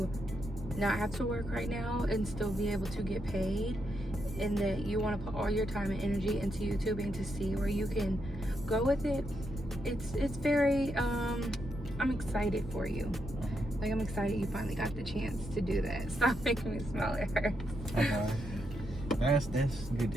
not have to work right now and still be able to get paid, and that you want to put all your time and energy into YouTubing to see where you can go with it. It's very I'm excited for you. Like, I'm excited you finally got the chance to do that. Stop making me smile, it hurts. Okay. That's good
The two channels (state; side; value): normal; both; correlation 0.81